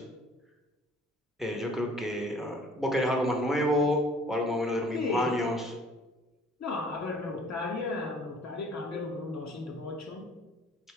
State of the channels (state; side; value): normal; both; correlation 0.54